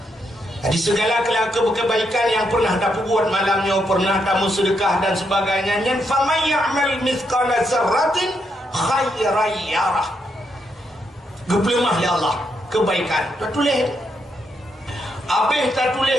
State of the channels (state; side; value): normal; both; correlation 0.79